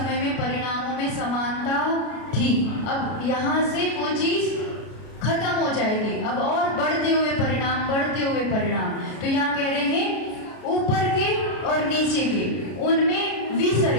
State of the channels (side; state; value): right; late; 33 ms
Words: में परिणामों में समानता थी। अब यहाँ से वो चीज खत्म हो जाएगी, अब और बढ़ते हुए परिणाम, बढ़ते हुए परिणाम। तो यहाँ कह रहे हैं ऊपर के और नीचे के उनमें